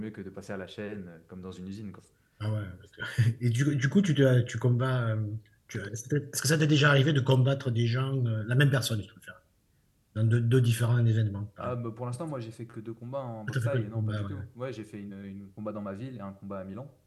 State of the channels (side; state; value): both; identical; correlation 1.00